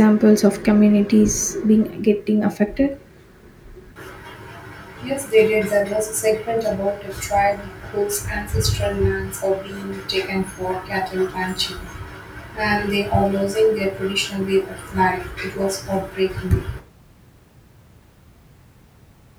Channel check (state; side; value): identical; both; correlation 1.00